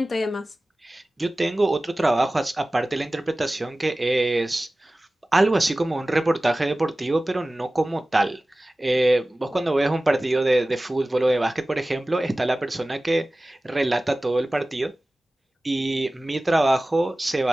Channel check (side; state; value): both; normal; correlation 0.97